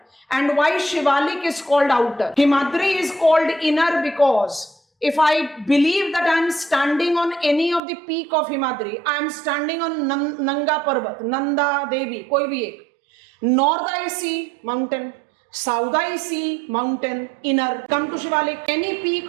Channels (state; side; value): drops out; left; at 7.8 s